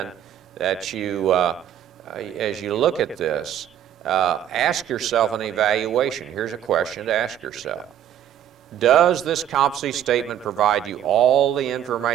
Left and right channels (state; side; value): quieter; left; 10.5 dB